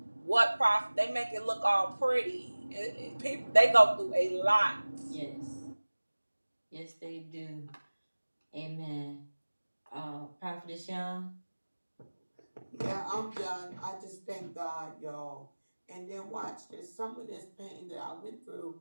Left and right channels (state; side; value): inverted; both; correlation -1.00